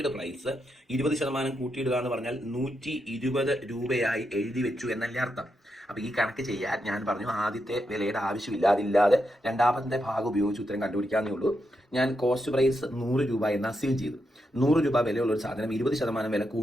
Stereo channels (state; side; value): normal; both; correlation 0.84